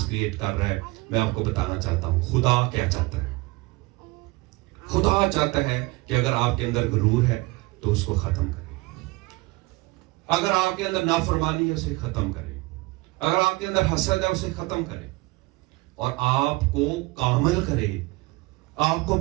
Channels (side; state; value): left; quieter; 23.5 dB